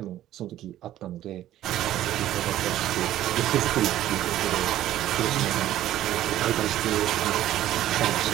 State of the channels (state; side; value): quieter; left; 13.2 dB